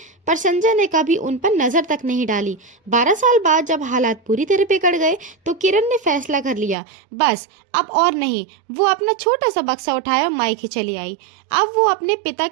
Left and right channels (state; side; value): drops out; left; at 6.8 s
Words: पर संजय ने कभी उन पर नजर तक नहीं डाली। 12 साल बाद जब हालात पूरी तरह बिगड़ गए तो किरण ने फैसला कर लिया, बस अब और नहीं। वो अपना छोटा सा बक्सा उठाया और मायके चली आई। अब वो अपने पिता